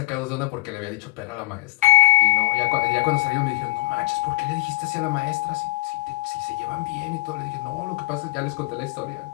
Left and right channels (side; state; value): right; quieter; 17.3 dB